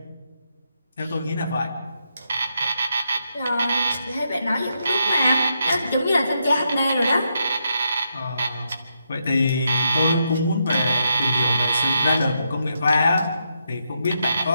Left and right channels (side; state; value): both; inverted; correlation -0.81